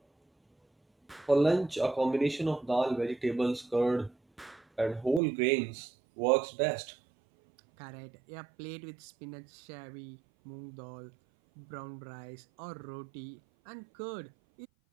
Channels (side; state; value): left; drops out; at 5.2 s